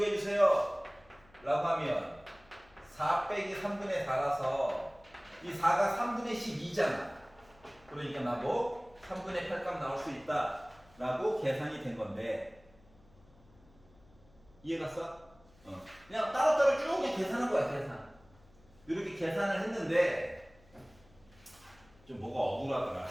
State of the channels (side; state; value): left; noise; hum, 27 dB below the sound